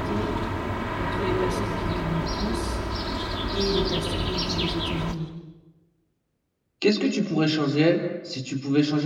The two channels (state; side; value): identical; both; correlation 1.00